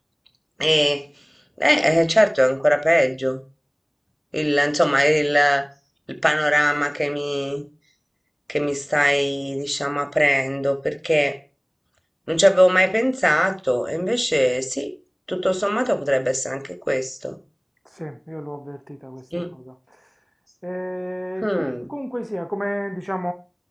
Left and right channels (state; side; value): identical; both; correlation 1.00